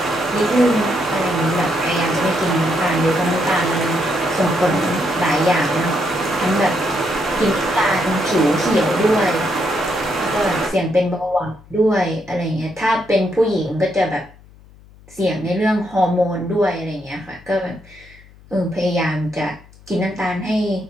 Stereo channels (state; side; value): noise; left; hum, 24 dB below the sound